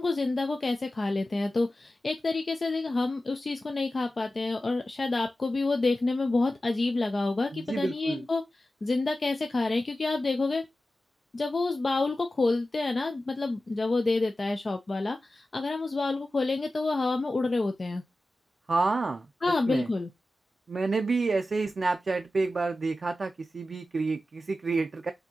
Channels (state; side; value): normal; both; correlation 0.94